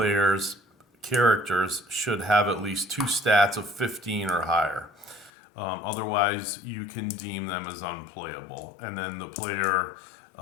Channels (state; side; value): drops out; right; at 5.3 s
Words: characters should have at least 2 stats of 15 or higher. Otherwise, you can deem them as unplayable, and then the player